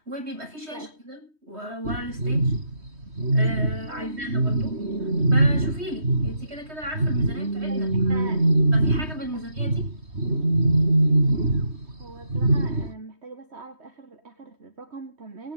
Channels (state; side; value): late; left; 3.2 ms